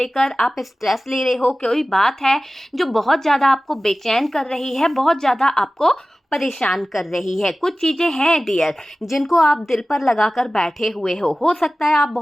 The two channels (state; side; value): normal; both; correlation 0.97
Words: आप स्ट्रेस ले रहे हो, कोई बात है जो बहुत ज़्यादा आपको बेचैन कर रही है, बहुत ज़्यादा आपको परेशान कर रही है। कुछ चीज़ें हैं डियर जिनको आप दिल पर लगाकर बैठे हुए हो सकता है आप